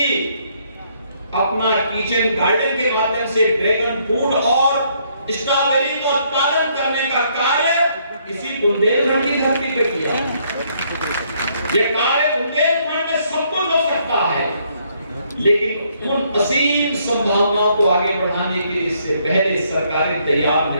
अपना किचन गार्डन के माध्यम से ड्रैगन फ्रूट और स्ट्रॉबेरी का उत्पादन करने का कार्य इसी बुंदेलखंड की धरती पे किया। यह कार्य बुंदेलखंड में सब कुछ हो सकता है, लेकिन उन असीम संभावनाओं को आगे बढ़ाने के लिए इससे पहले सरकारें तैयार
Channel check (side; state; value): both; inverted; correlation -0.70